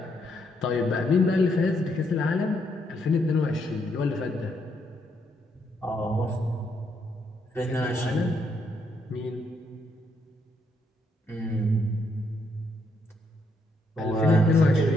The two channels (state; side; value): normal; both; correlation 0.75